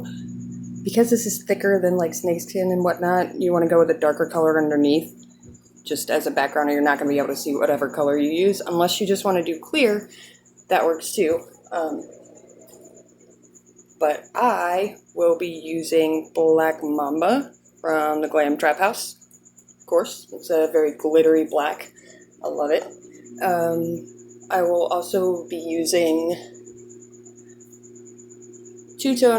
because this is thicker than, like, snakeskin and whatnot, you want to go with a darker color underneath, just as a background, or you're not going to be able to see whatever color you use. Unless you just want to do clear, that works too. But I will be using Black Mamba from the Glam Trap House. Of course, it's a very glittery black. I love it. I will also be using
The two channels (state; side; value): identical; both; correlation 1.00